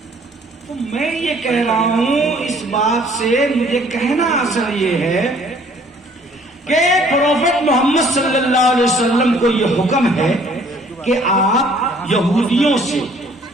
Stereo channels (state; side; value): normal; both; correlation 0.58